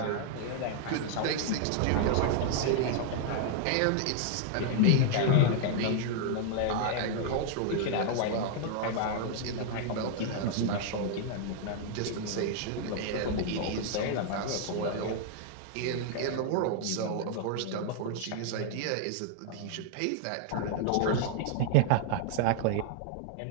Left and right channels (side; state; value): both; different; correlation 0.00